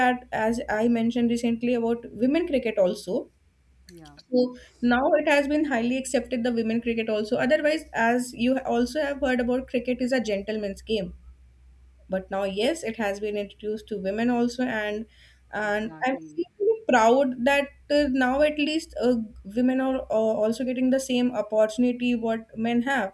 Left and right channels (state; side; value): identical; both; correlation 1.00